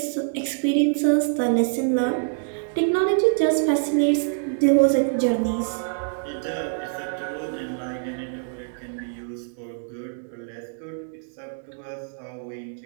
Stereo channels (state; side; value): silent; left; digital silence